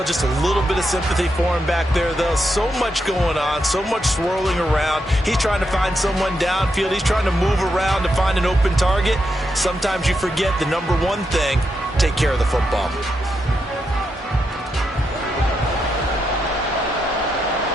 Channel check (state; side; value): normal; both; correlation 0.83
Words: just a little bit of sympathy for him back there, though? So much going on, so much swirling around. He's trying to find someone downfield. He's trying to move around to find an open target. Sometimes you forget the number one thing, take care of the football.